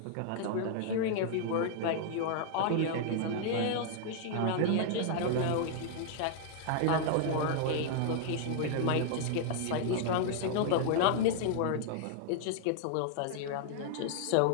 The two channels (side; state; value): both; different; correlation -0.01